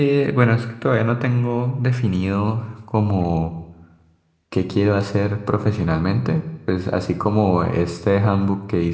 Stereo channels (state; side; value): identical; both; correlation 1.00